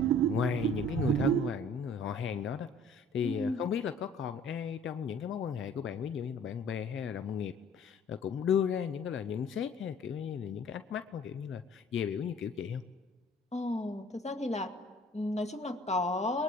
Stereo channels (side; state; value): both; normal; correlation 0.52